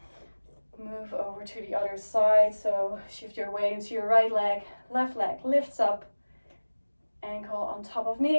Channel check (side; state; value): both; inverted; correlation -1.00